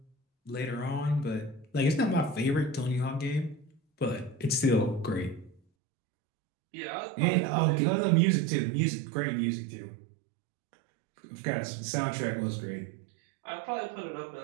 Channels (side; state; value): left; drops out; at 5.6 s